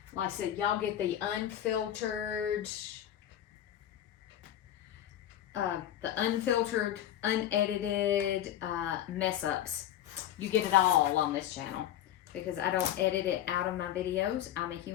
Like I said, y'all get the unfiltered, unedited mess ups. You get it all on this channel because I don't edit it out of my videos. I'm a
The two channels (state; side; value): quieter; right; 11.5 dB